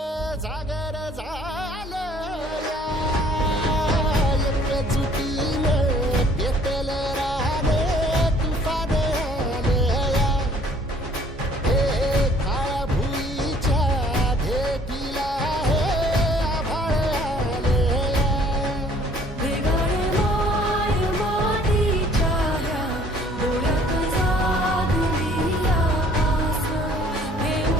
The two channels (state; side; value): normal; both; correlation 0.56